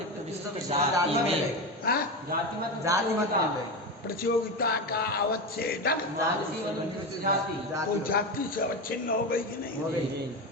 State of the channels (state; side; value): normal; both; correlation 0.19